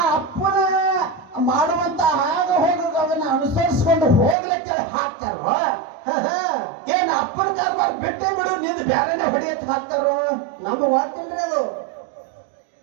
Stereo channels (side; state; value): left; drops out; at 4.4 s